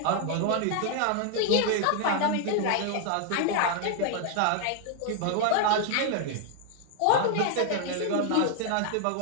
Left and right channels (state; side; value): different; both; correlation 0.00